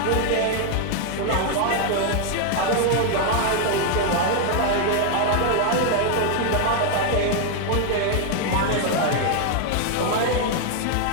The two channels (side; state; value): both; different; correlation 0.00